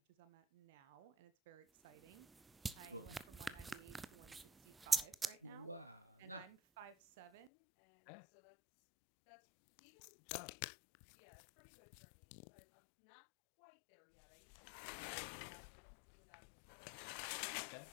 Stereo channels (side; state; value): right; drops out; at 7.5 s